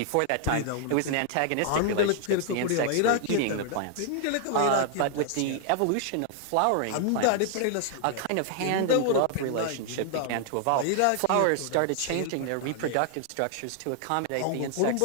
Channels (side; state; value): both; different; correlation 0.00